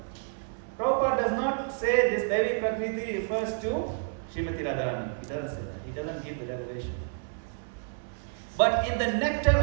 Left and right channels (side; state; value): left; silent; 58 dB below the other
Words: Prabhupada does not say this Devi Prakriti refers to Srimati Radharani. He doesn't say that. He doesn't give the revelation. But in the Nectar